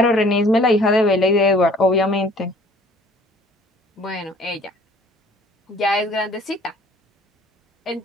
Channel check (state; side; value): normal; both; correlation 0.54